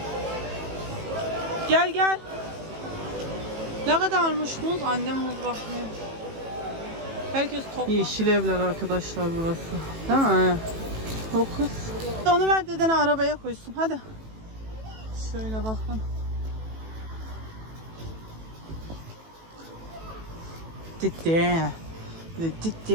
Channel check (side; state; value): left; late; 18 ms